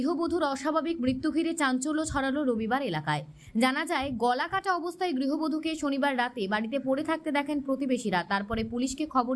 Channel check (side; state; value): both; identical; correlation 1.00